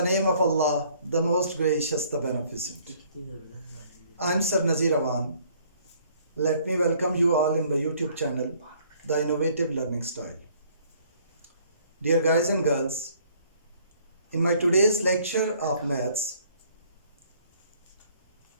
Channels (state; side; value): inverted; both; correlation -0.60